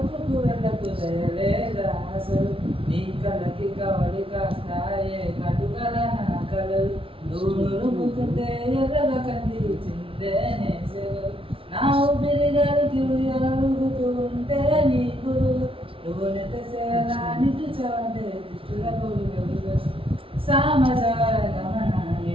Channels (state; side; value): late; left; 0.26 ms